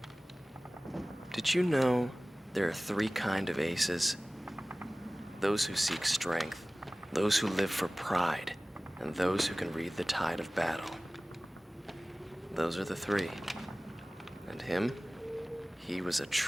Did you know there are 3 kinds of aces? Those who seek strength, those who live for pride, and those who can read the tide of battle. Those are the 3. And him? He was a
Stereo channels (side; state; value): both; normal; correlation 0.98